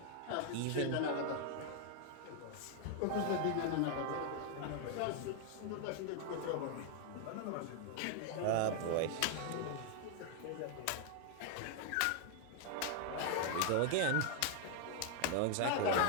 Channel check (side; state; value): both; different; correlation 0.00